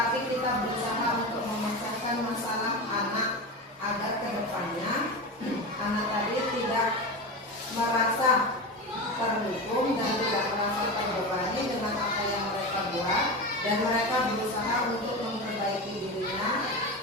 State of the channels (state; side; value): normal; both; correlation 0.23